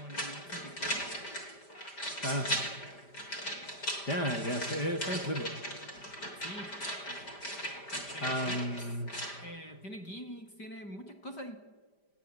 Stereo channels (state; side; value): late; right; 5.1 ms